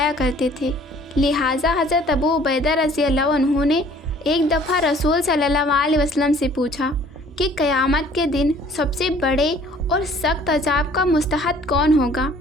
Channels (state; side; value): normal; both; correlation 0.55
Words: کرتے تھے۔ لہٰذا حضرت ابو عبیدہ رضی اللہ عنہ نے ایک دفعہ رسول صلی اللہ علیہ وسلم سے پوچھا کہ قیامت کے دن سب سے بڑے اور سخت عذاب کا مستحق کون ہوگا؟